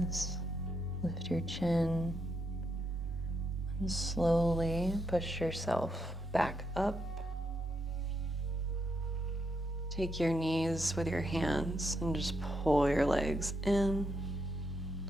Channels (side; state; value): both; normal; correlation 0.80